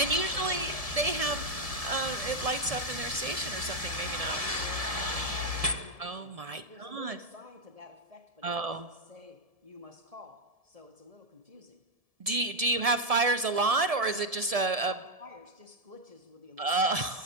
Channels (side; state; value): left; late; 1.7 ms